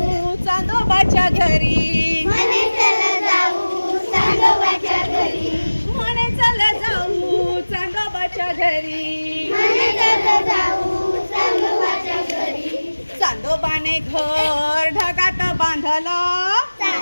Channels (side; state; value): both; inverted; correlation -1.00